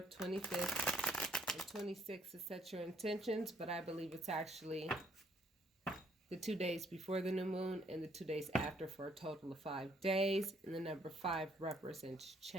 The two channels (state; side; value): normal; both; correlation 0.66